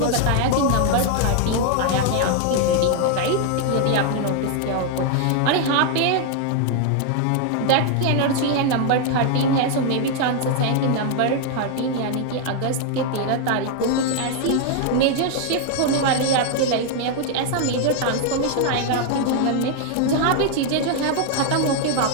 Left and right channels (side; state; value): both; different; correlation 0.00